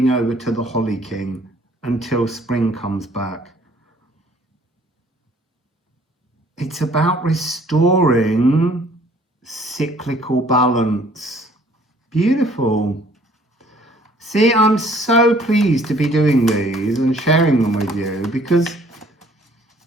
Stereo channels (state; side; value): normal; both; correlation 0.58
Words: over to the holly king until spring comes back. It's about restoring cyclical balance. Beautiful. See, I'm so pleased to be doing these and sharing them with you, because